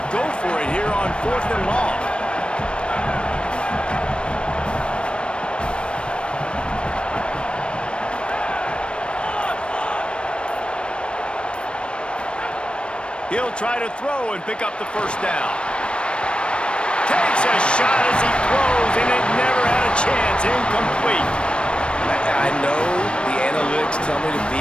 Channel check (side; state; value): right; late; 0.057 ms